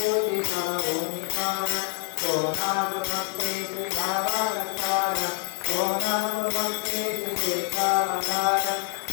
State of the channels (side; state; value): right; silent; 56 dB below the other